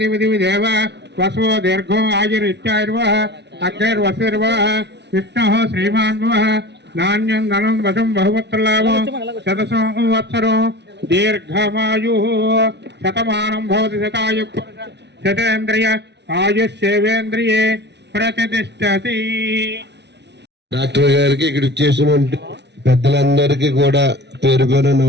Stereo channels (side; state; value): left; late; 0.50 ms